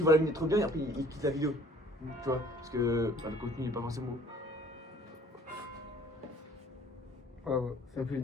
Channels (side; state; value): both; normal; correlation 0.55